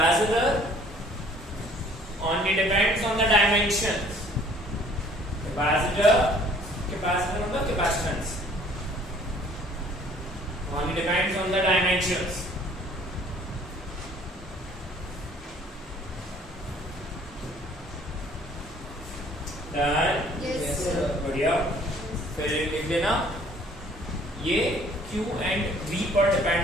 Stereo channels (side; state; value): both; normal; correlation 0.56